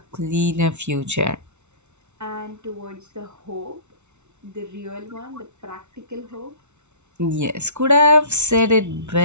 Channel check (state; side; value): late; left; 0.82 ms